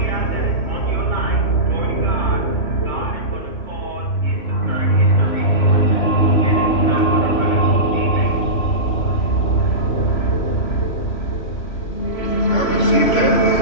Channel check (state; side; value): late; right; 3.5 ms